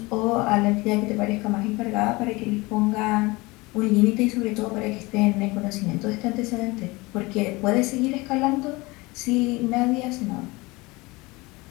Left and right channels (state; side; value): quieter; right; 23.3 dB